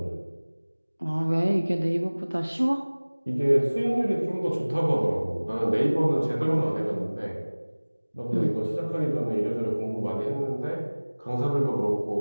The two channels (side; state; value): both; inverted; correlation -1.00